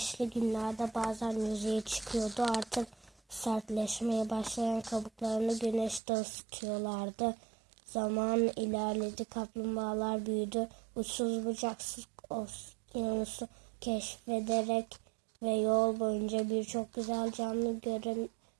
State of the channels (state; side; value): drops out; left; at 6.0 s